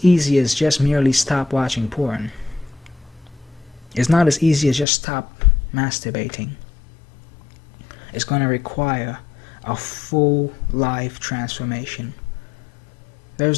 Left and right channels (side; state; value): right; drops out; at 4.9 s